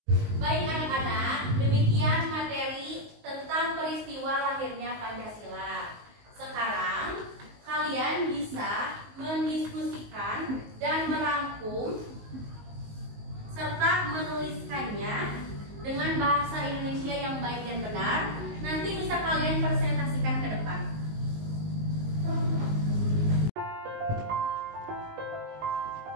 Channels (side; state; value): left; late; 19 ms